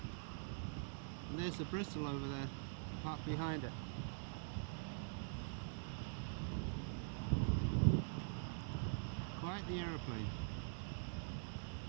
And there's the Bristol over there, parked behind it. Quite the aeroplane.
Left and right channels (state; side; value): silent; left; digital silence